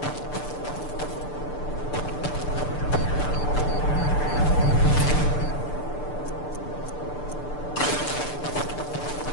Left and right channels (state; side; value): late; right; 6.8 ms